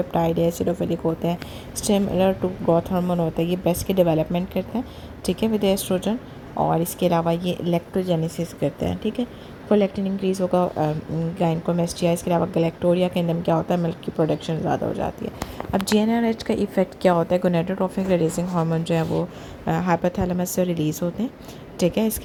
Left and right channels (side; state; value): both; identical; correlation 1.00